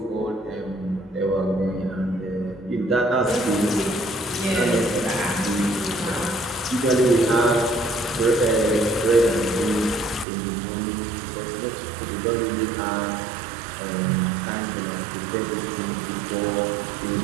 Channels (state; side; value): drops out; left; at 10.2 s